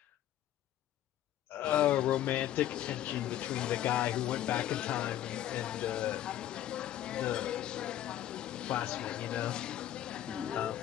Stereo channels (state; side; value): quieter; right; 12.2 dB